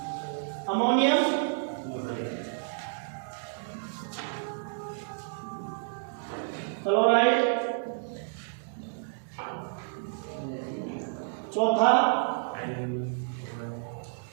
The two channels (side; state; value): left; silent; digital silence